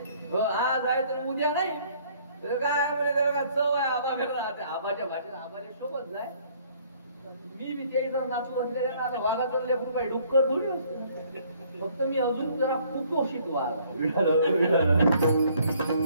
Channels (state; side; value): inverted; both; correlation -0.61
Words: आज आहे तर उद्या नाही तर काय म्हणजे त्याला चव आहे. आबा राहते आबाच्या भाषेत आबाच्या सोबत जाय. मी बी त्या नाचू असलेल्या आता वाघाचं लेकरू काही डुक्कर थोडी असतो. फक्त मी अजून जरा कुपोषित वाघ. असो